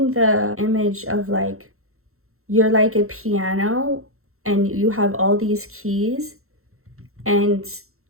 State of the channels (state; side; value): late; left; 0.63 ms